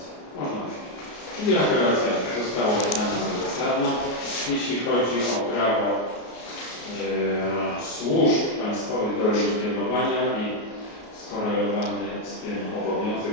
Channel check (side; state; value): right; late; 33 ms